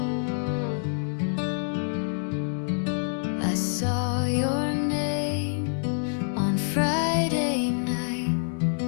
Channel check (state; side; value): silent; right; digital silence